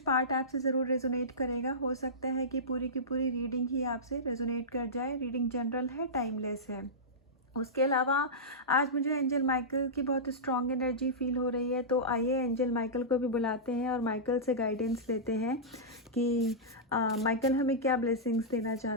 आपसे ज़रूर रेजोनेट करेगा। हो सकता है कि पूरी की पूरी रीडिंग ही आपसे रेजोनेट कर जाए। रीडिंग जनरल है, टाइमलेस है। उसके अलावा आज मुझे एंजल माइकल की बहुत स्ट्रॉन्ग एनर्जी फील हो रही है। तो आइए एंजल माइकल को भी बुलाते हैं और माइकल से गाइडेंस लेते हैं कि माइकल हमें क्या ब्लेसिंग्स देना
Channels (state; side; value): normal; both; correlation -0.15